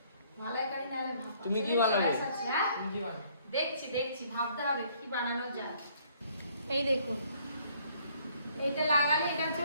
মালাইকারি নালে ভাপা। তুমি কি বানাবে? হ্যাঁ তুমি কি বানাবে? দেখছি ভাবতে হবে কি বানানো যায়। এই দেখুন, এইটা লাগালে, এটা হচ্ছে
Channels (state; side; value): inverted; both; correlation -0.63